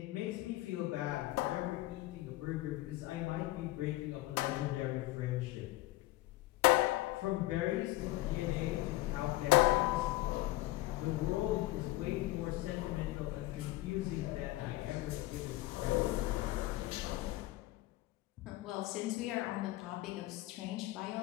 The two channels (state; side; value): quieter; right; 18.1 dB